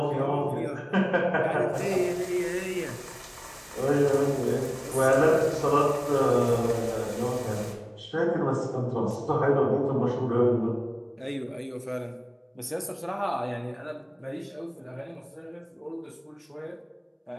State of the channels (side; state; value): both; identical; correlation 1.00